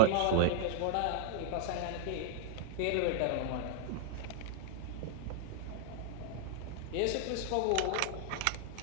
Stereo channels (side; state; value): both; different; correlation -0.01